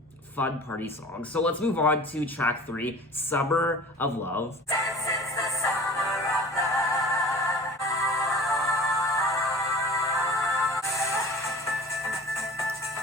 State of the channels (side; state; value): both; normal; correlation 0.42